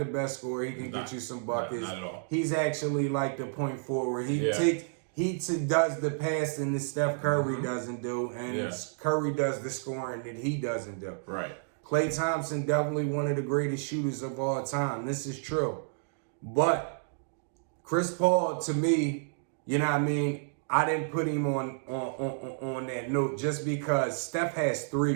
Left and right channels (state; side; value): silent; left; digital silence